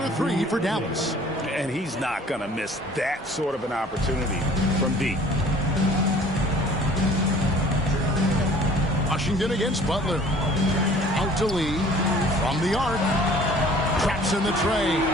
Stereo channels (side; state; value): both; normal; correlation 0.51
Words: 3 for Dallas. And he's not going to miss that sort of an opportunity from deep. Washington against Butler. Out to Lee. From the arc. Traps in the tray.